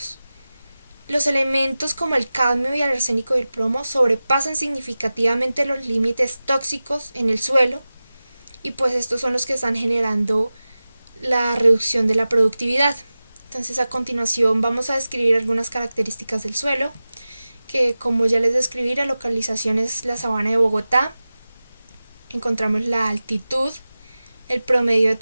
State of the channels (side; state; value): both; inverted; correlation -0.96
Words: Los elementos como el cadmio y el arsénico y el plomo sobrepasan significativamente los límites tóxicos en el suelo y pues estos son los que están generando la reducción de la productividad. Entonces a continuación vamos a describir algunas características del suelo, que como ya les describí, la localización es la sabana de Bogotá. Encontramos la altitud, el promedio de